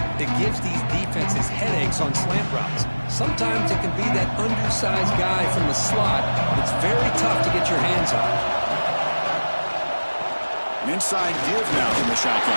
that gives these defenses headaches on slant routes. Sometimes it can be that undersized guy from the slot that's very tough to get your hands on. An inside give now from the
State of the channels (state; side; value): inverted; both; correlation -1.00